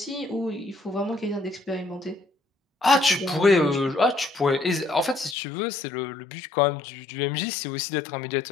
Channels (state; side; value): drops out; right; at 5.4 s